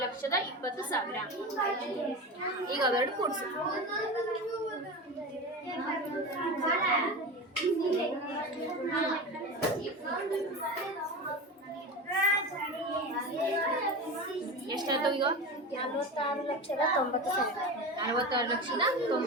ಈಗ ಅವೆರಡು ಕೂಡಿಸು. ಎಷ್ಟಾಯ್ತು ಈಗ? 46,90,000.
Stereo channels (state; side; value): normal; both; correlation 0.26